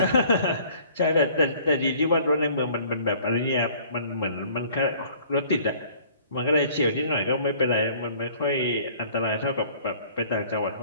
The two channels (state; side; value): inverted; both; correlation -0.53